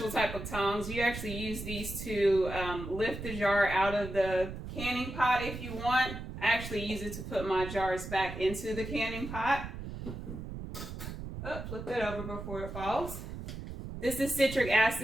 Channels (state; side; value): noise; right; rumble, 8 dB below the sound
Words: type of tongs. You actually use these to lift the jar out of the canning pot if you want. I actually use it to put my jars back into the canning pot. Oh, flip that over before it falls. This is citric